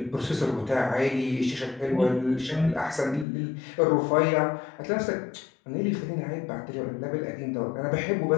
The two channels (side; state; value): right; drops out; at 3.2 s